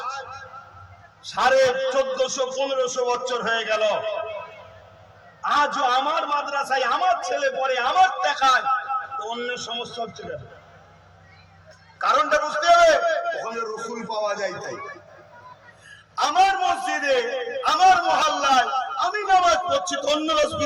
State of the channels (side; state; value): both; identical; correlation 1.00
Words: 1450-1500 বছর হয়ে গেল, আজও আমার মাদ্রাসায় আমার ছেলে পড়ে, আমার দেখায়, তো অন্য সমস্যা হচ্ছে কেন? কারণটা বুঝতে হবে। ওখানে রাসূল পাওয়া যায়। তাই আমার মসজিদে, আমার মহল্লায় আমি নামাজ পড়ছি, তো অন্য